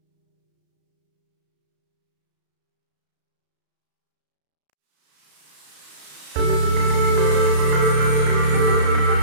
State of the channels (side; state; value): left; late; 34 ms